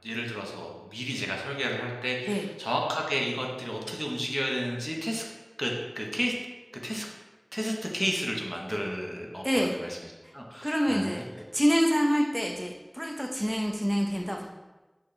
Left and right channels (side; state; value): both; identical; correlation 1.00